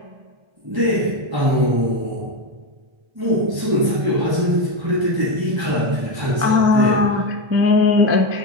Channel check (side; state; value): left; late; 1.3 ms